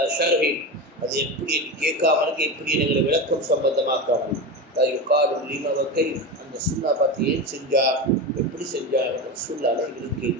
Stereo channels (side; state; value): both; normal; correlation 0.22